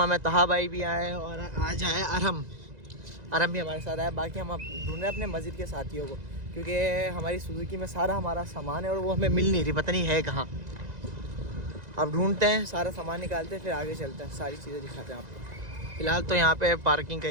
में तहा भाई भी आए और आज आए अरम भी हमारे साथ आया। बाकी हम अब ढूंढ रहे हैं अपने मस्जिद के साथियों को, क्योंकि हमारी सुजुकी में सारा हमारा सामान है और वो हमें मिल नहीं रही, पता नहीं है कहाँ। अब ढूंढते हैं, सारा सामान निकालते हैं, फिर आगे चलते हैं, सारी चीज़ें दिखाते हैं आपको। फिलहाल तो यहाँ पे पार्किंग का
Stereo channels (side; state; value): left; late; 1.9 ms